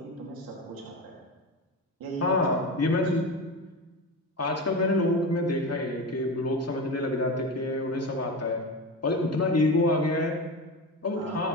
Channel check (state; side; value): normal; both; correlation 0.23